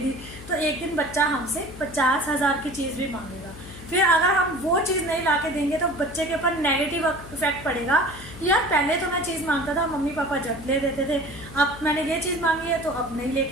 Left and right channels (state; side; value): noise; left; hum, 15 dB below the sound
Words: तो एक दिन बच्चा हमसे 50,000 की चीज़ भी मांगेगा। फिर अगर हम वो चीज़ नहीं ला के देंगे तो बच्चे के ऊपर नेगेटिव इफेक्ट पड़ेगा। यार पहले तो मैं चीज़ मांगता था, मम्मी पापा जब ले देते थे, अब मैंने ये चीज़ मांगी है तो अब नहीं